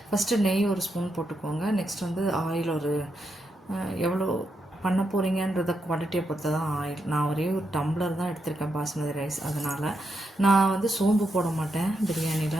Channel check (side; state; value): both; normal; correlation 0.83